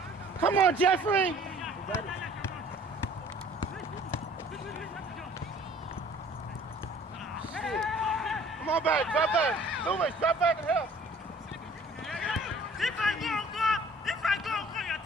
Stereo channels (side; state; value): both; normal; correlation 0.53